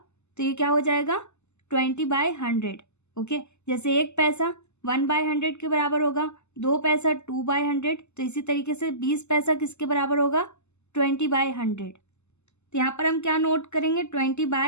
तो ये क्या हो जाएगा 20/100। ओके, जैसे एक पैसा 1/100 के बराबर होगा, 2 पैसा 2/100, तो इसी तरीके से 20 पैसा किसके बराबर होगा 20/100। तो यहाँ पर हम क्या नोट करेंगे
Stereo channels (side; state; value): right; late; 0.83 ms